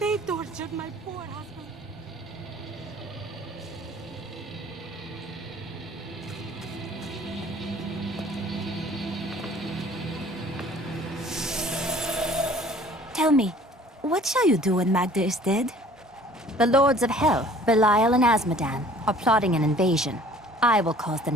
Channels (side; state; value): both; normal; correlation 0.52